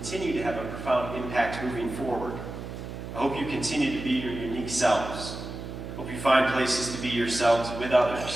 to have a profound impact moving forward. I hope you continue to be your unique selves. I hope you find places to be yourselves with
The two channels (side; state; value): right; noise; hum, 9 dB below the sound